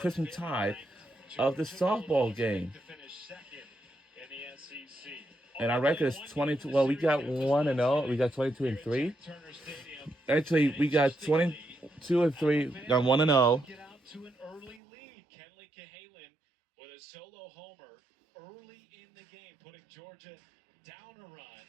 Tide of the softball game. And our record is 22. Well, we got 1 and 0. We got 22 and 3. Actually, we got 22 and 3. Got 1 and 0. With a solo homer early in the game, putting Georgia down a run.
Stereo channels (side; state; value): left; drops out; at 14.8 s